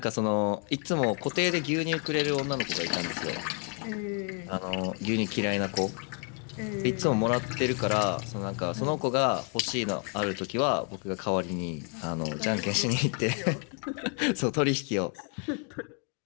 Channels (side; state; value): right; quieter; 37.7 dB